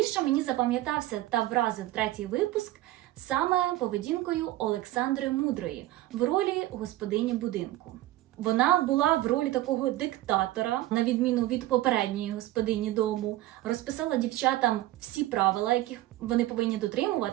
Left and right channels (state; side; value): quieter; left; 16.1 dB